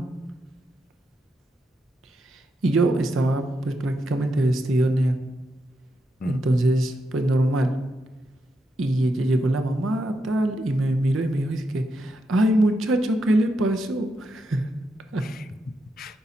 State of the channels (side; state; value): both; normal; correlation 0.83